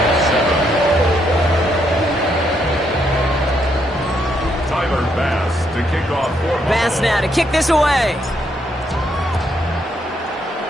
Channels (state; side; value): normal; both; correlation 0.75